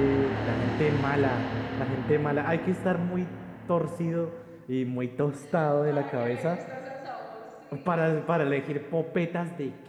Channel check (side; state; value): both; identical; correlation 1.00